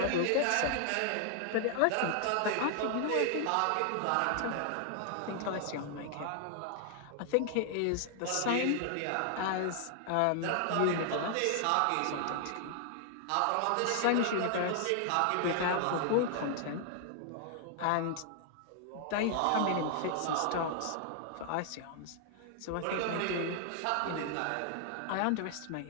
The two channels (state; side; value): different; both; correlation 0.00